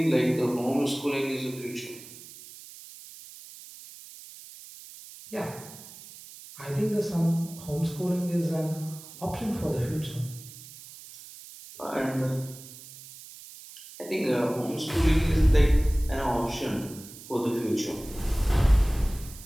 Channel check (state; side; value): noise; right; hiss, 17 dB below the sound